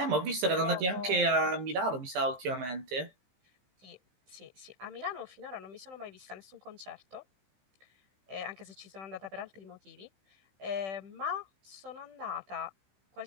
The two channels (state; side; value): late; left; 15 ms